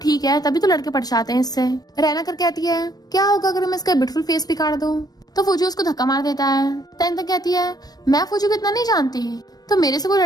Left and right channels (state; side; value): late; right; 0.19 ms